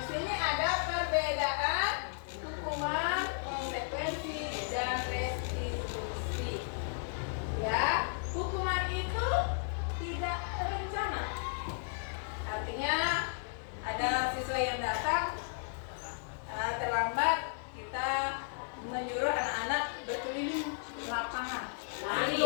sini ada perbedaan hukuman, konsekuensi, dan restitusi. Ya, hukuman itu tidak terencana. Artinya ada siswa yang datang terlambat, kita menyuruh anak-anak berkeliling lapangan. Lari.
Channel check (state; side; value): silent; right; 55 dB below the other